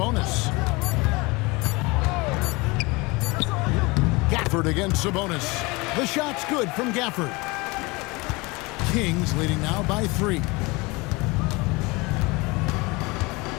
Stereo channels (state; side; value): quieter; right; 25.0 dB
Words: Gafford against Sabonis. The shot's good from Gafford. Kings leading now by 3.